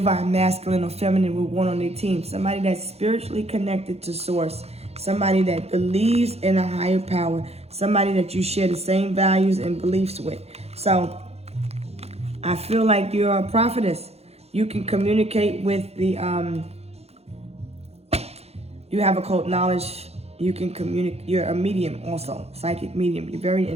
masculine or feminine would want on their team. Somebody that's spiritually connected to Source. Somebody that believes in a higher power. Somebody that you share the same values and beliefs with. So I feel like you're a prophetess. You can communicate with the, you have occult knowledge. You can communicate. You're a medium also, psychic medium. You're very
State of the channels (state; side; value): late; left; 0.30 ms